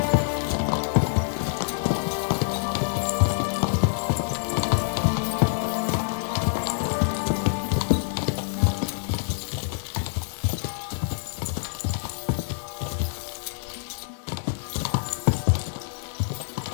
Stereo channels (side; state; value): right; silent; digital silence